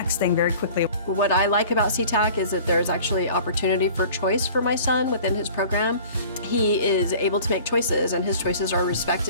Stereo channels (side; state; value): both; inverted; correlation -0.45